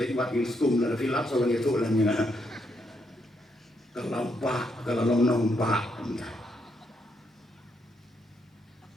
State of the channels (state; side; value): normal; both; correlation 0.77